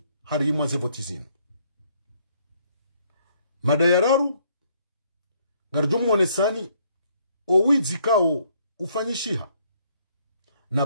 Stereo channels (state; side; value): inverted; both; correlation -0.67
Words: harimwa zevotizinu mada ya raru ngarjumu wonesani owizi kao ufanyishiha na